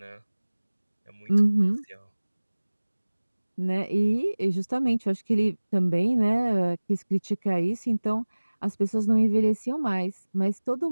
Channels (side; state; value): both; inverted; correlation -1.00